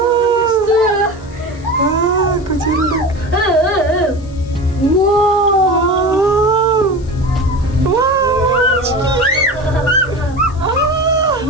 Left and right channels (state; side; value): noise; left; hiss, 26 dB below the sound